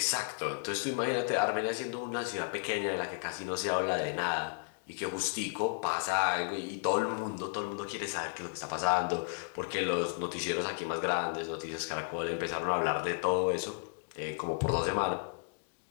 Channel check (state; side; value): silent; right; digital silence